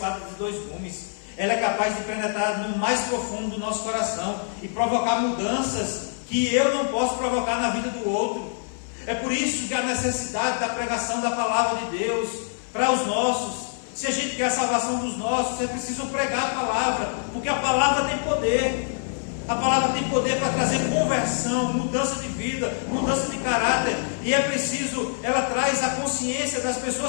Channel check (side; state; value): right; silent; 58 dB below the other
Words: de 2 gumes. Ela é capaz de penetrar no mais profundo do nosso coração e provocar mudanças que eu não posso provocar na vida do outro. É por isso que a necessidade da pregação da palavra de Deus para os nossos. Se a gente quer a salvação dos nossos, é preciso pregar a palavra, porque a palavra tem poder. A palavra tem poder para trazer conversão, mudança de vida, mudança de caráter. E é preciso, ela traz a consciência das